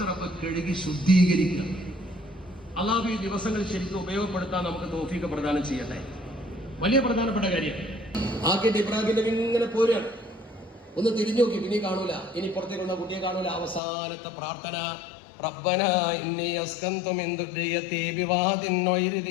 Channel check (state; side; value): drops out; right; at 13.8 s